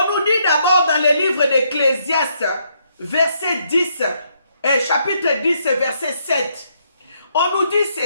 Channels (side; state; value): both; inverted; correlation -0.74